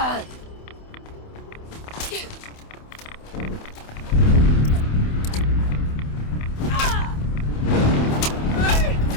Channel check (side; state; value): right; late; 28 ms